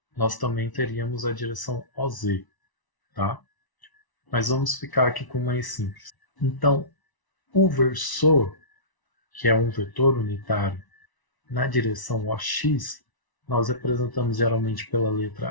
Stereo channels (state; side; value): late; right; 1.0 ms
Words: nós também teríamos a direção OZ, tá? Mas vamos ficar aqui com o mais simples. Então, o versor que é um vetor unitário, na direção OX, nós representamos geralmente pela